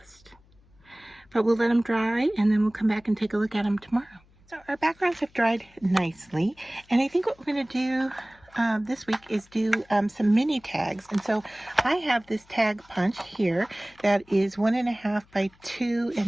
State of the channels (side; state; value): left; noise; hum, 30 dB below the sound